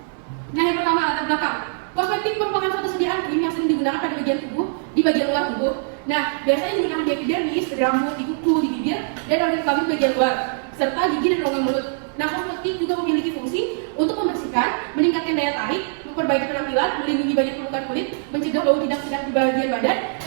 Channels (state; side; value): silent; left; digital silence